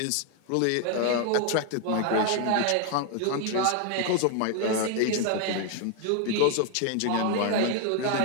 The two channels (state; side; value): different; both; correlation 0.00